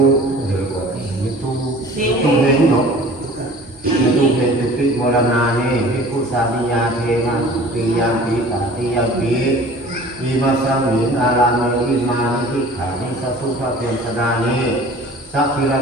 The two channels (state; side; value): normal; both; correlation 0.46